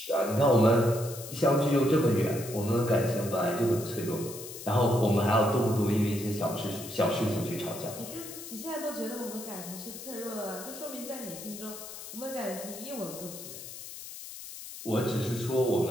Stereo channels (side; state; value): left; noise; hiss, 12 dB below the sound